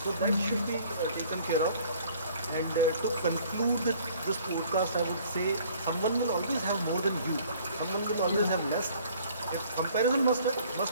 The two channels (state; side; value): inverted; both; correlation -0.55